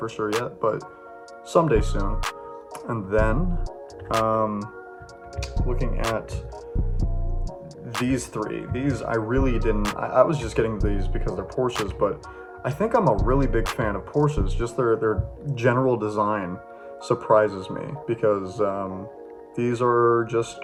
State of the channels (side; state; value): both; identical; correlation 1.00